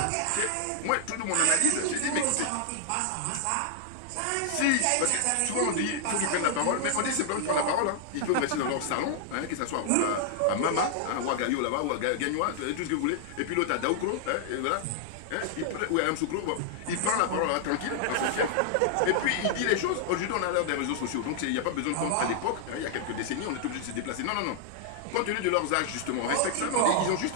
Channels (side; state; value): both; different; correlation -0.01